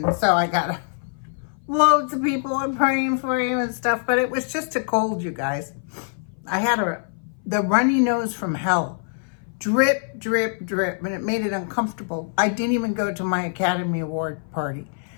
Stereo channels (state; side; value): silent; right; 59 dB below the other